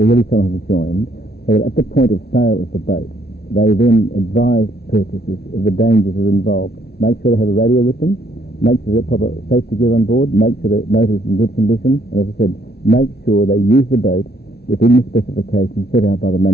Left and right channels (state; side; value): late; right; 0.47 ms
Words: some have joined, so that at the point of sale of the boat, they then advise purchasers of the dangers that are involved. Make sure they have a radio with them, make sure they've got proper safety gear on board, make sure the motor is in good condition, and as I said, make sure they use the boat within the specifications set out by the